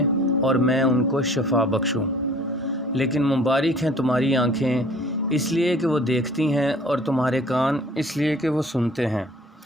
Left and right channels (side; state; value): both; normal; correlation 0.51